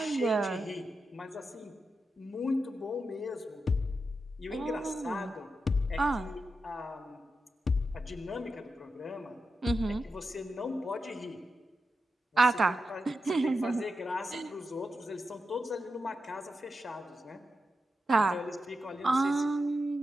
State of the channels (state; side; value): normal; both; correlation 0.88